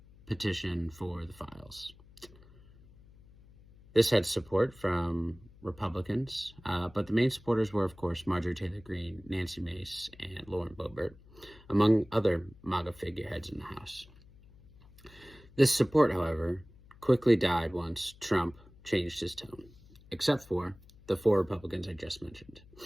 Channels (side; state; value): left; noise; hum, 24 dB below the sound